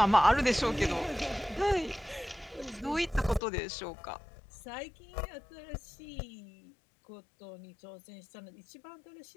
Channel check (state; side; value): drops out; right; at 3.4 s